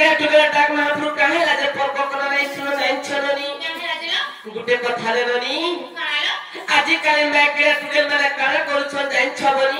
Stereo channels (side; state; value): both; identical; correlation 1.00